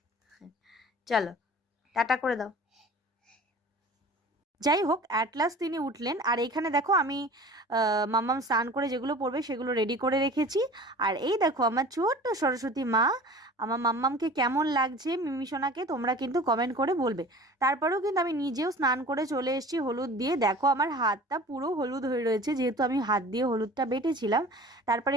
চলো, টাটা করে দাও। যাই হোক, অ্যাট লাস্ট তিনি উঠলেন। আর এইখানে দেখো আমি মাম্মাম স্নান করে যেগুলো পড়বে সেগুলো রেডি করে রেখেছি। আর এই দেখো আমার ছোট্ট সরস্বতী মা। আমার মাম্মামকে কেমন লাগছে মিমিসোনাকে তোমরা কিন্তু কমেন্ট করে বলবে। তারপরেও কিন্তু আমি নিজেও স্নান করে চলে এসেছি হলুদ দিয়ে। দেখো আমার হাতটা পুরো হলুদ হয়ে রয়েছে, যেহেতু আমি হাত দিয়ে হলুদটা বেটেছিলাম। তারপরে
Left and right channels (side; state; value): both; normal; correlation 0.42